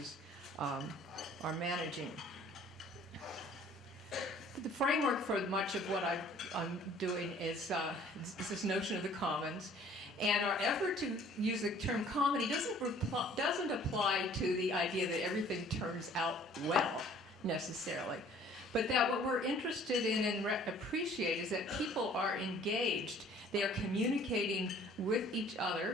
are managing. The framework for much of what I'm doing is this notion of the commons. And our effort to use the term comedy doesn't apply to the idea that everything turns out well, necessarily. But that what we're interested in and appreciate is that people are engaged. They are communicating with each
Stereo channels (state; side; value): normal; both; correlation 0.54